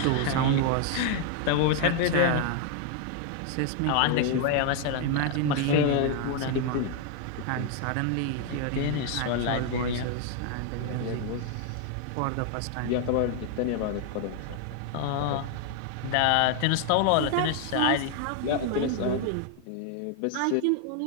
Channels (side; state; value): both; different; correlation 0.00